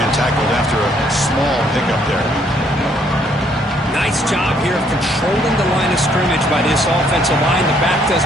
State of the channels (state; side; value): normal; both; correlation 0.67